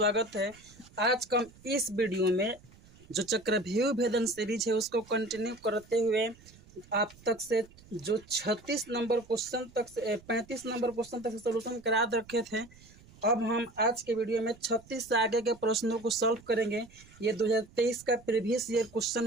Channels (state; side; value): noise; right; rumble, 24 dB below the sound